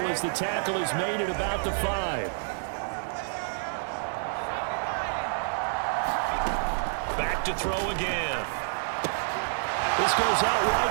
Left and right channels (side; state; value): left; silent; digital silence